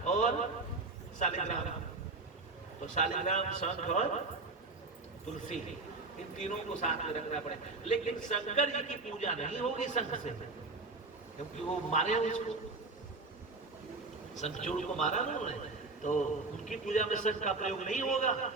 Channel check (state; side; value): quieter; left; 3.6 dB